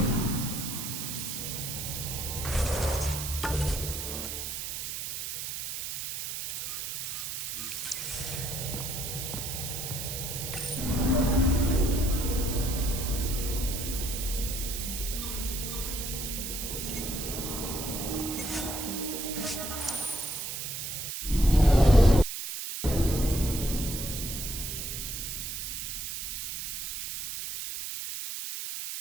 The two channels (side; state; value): right; noise; hiss, 5 dB below the sound